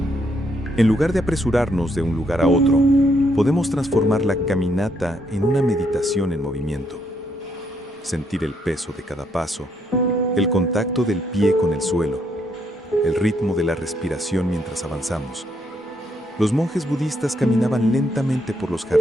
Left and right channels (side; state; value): both; normal; correlation 0.74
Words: En lugar de apresurarnos de un lugar a otro, podemos transformar la caminata en una meditación en movimiento. sentir el peso de cada paso, el contacto del pie con el suelo, el ritmo de la respiración mientras avanzamos. Los monjes budistas caminaban lentamente por los